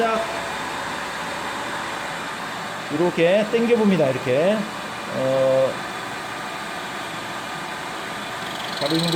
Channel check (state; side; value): identical; both; correlation 1.00